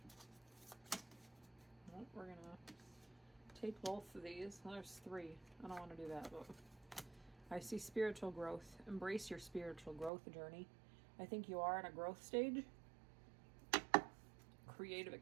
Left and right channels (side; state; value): left; drops out; at 10.1 s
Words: Well, we're going to take both of these. Well, there's 3. I don't want to do that, but I see spiritual growth. Embrace your spiritual growth journey. I think you are in a growth stage. Creative